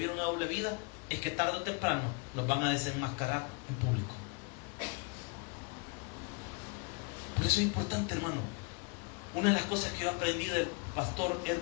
una doble vida es que tarde o temprano nos van a desenmascarar en público. Por eso es importante, hermano. Una de las cosas que yo aprendí del pastor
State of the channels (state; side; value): quieter; right; 32.6 dB